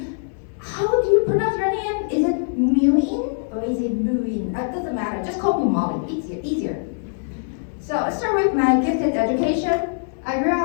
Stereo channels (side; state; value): right; silent; digital silence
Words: how do you pronounce your name? Is it Mu-Yin or is it Mu-Yin? It doesn't matter. Just call me Molly. Easier. So let's start with my gifted education. I grew